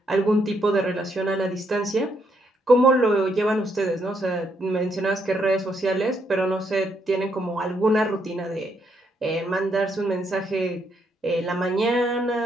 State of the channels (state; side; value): normal; both; correlation 0.75